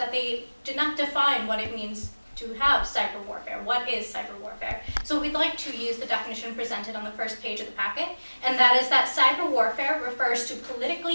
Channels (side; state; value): both; inverted; correlation -1.00